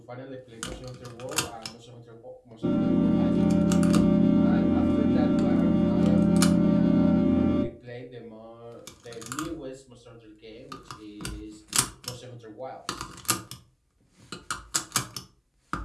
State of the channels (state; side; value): identical; both; correlation 1.00